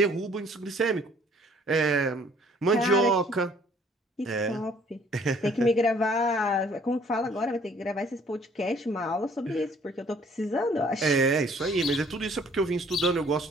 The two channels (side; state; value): both; normal; correlation 0.59